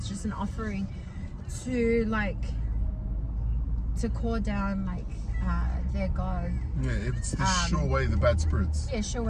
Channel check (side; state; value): both; identical; correlation 1.00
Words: just an offering to like to call down like their god. Yeah, it's to show away the bad spirits. Yeah, show